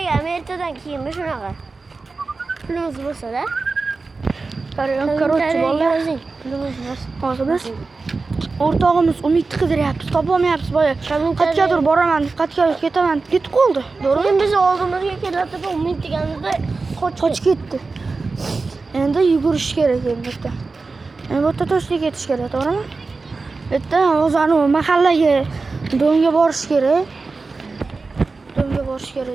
ertadan keyin shunaqa. Pulimiz bo'lsa-da. Короче, bolalar, pulimiz bo'lsa. hozir biz o'rtog'imiz Umidni qidiryapmiz, topolmayapmiz boya. Qayergadir boraman, qayerga ketaman, ketib qoldi. To'g'rimi? Biz oldimizga kelayotib Umid deganimizda qochib ketdi. Endi yugurish kerak endi. Endi bu yerda to'shlik ketish kerak, to'g'rimi? Bu yerda o'zani mahallaga do'nga borish kerak. Do'nga borish kerak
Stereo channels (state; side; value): quieter; left; 4.0 dB